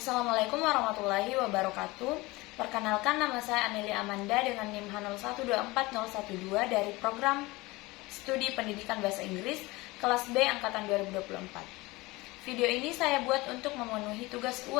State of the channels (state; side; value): quieter; right; 21.8 dB